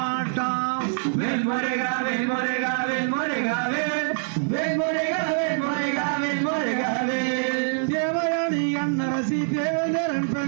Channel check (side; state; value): left; silent; digital silence